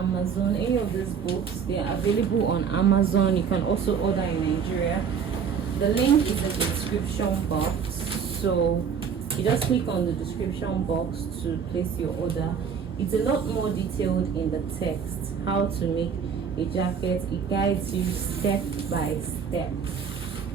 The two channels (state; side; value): quieter; left; 6.8 dB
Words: any of these books, they are available on Amazon. You can also order in Nigeria. The link is in the description box. So you just click on the description box to place your order. It's a lot more detailed in the text, how to make a jacket. It guides you step by step.